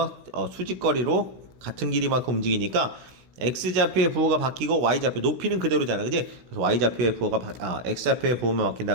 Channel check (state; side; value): late; left; 16 ms